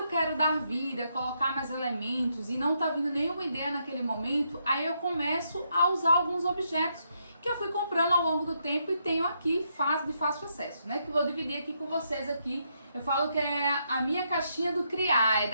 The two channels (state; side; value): inverted; both; correlation -0.78